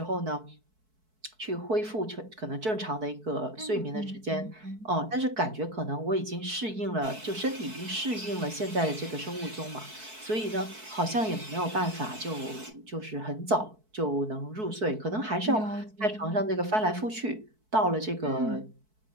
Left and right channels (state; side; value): late; left; 4.6 ms